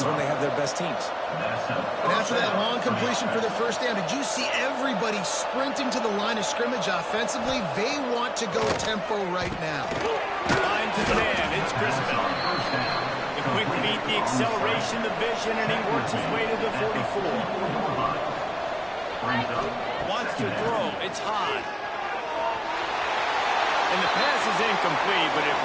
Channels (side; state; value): both; identical; correlation 1.00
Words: when they have their best teams. And after that long completion for the first down, did you see everybody sprinting to the line of scrimmage offensively? They want to go tempo right now. Line to the man. It's Crispin. The quick feet, the acceleration, the vision, and he works his way to the 44. Wants to throw. It's high. And the pass is incomplete, but it